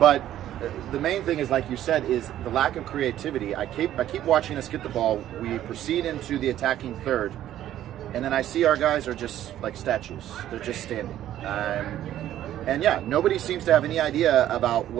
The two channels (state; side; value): quieter; left; 12.3 dB